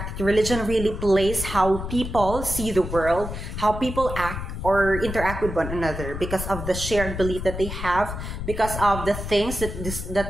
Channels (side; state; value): left; noise; rumble, 7 dB below the sound